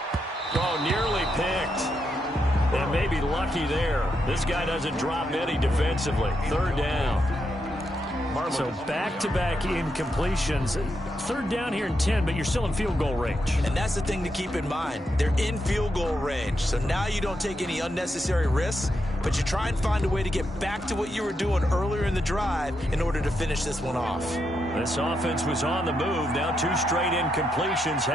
Oh, nearly picked. And maybe lucky there. This guy doesn't drop any defensively. 3rd down. So back-to-back incompletions. 3rd down here in 10, but you're still in field goal range. And that's the thing to keep in mind. They're in field goal range. So now you don't take any unnecessary risks, but you try and find a way to get back to what you were doing earlier in the drive in order to finish this one off. This offense was on the move. Now 2 straight incompletions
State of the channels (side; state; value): both; normal; correlation 0.82